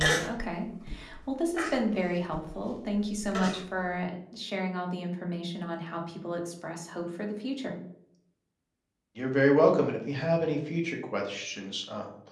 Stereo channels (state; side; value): identical; both; correlation 1.00